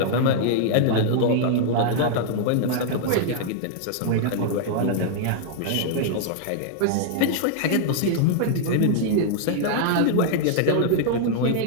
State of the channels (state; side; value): different; both; correlation -0.01